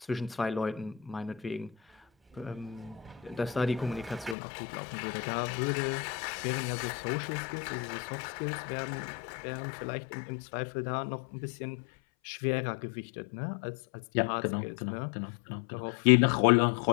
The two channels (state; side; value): drops out; right; at 4.4 s